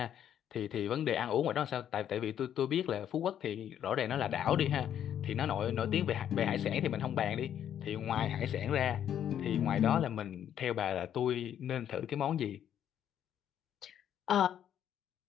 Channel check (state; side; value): quieter; right; 9.9 dB